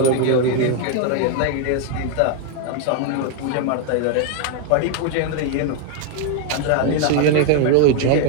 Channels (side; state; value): both; different; correlation 0.00